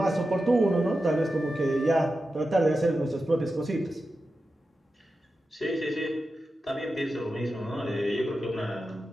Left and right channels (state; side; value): normal; both; correlation 0.91